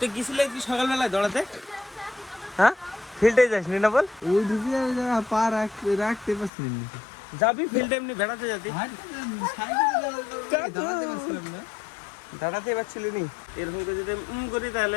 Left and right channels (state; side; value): drops out; right; at 6.5 s